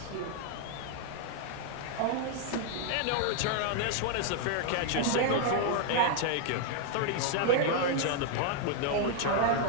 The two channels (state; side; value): different; both; correlation -0.01